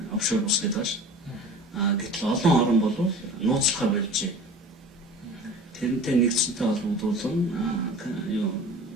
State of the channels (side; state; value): both; normal; correlation 0.40